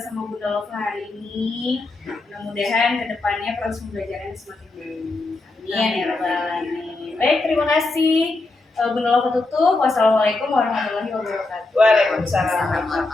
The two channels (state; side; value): quieter; right; 3.2 dB